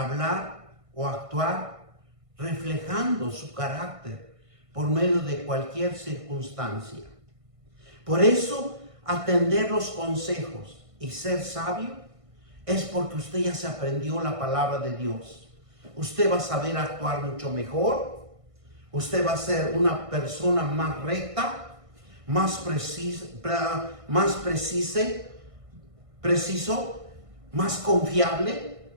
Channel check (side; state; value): left; late; 1.6 ms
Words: hablar o actuar reflejando su carácter por medio de cualquier circunstancia. Por eso atender los consejos y ser sabio, es porque usted ya se aprendió la palabra de Dios. Usted va a saber actuar mucho mejor. Usted va a ser una persona más recta, más preciso, más confiable,